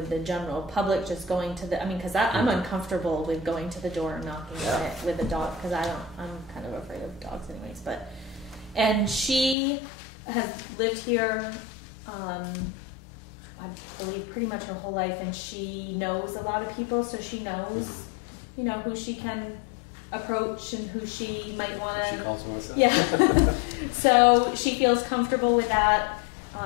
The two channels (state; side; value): drops out; right; at 9.6 s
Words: the general public, just going to the, because I'm uncomfortable with going to the door and knocking on it with a dog, because I'm kind of afraid of dogs anyways, and she has lived here, I believe pretty much her whole life, and she knows a lot of people, so she knows, who she can approach and who she might want to. She calls Melissa. Yeah. So she feels comfortable with that.